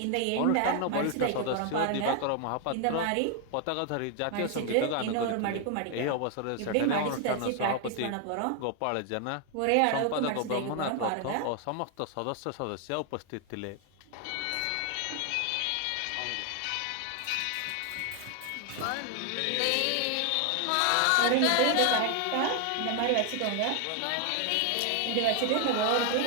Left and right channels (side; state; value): both; different; correlation 0.00